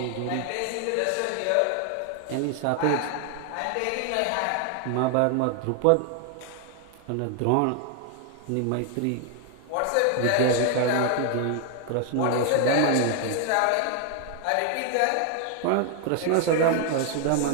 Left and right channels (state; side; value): different; both; correlation 0.00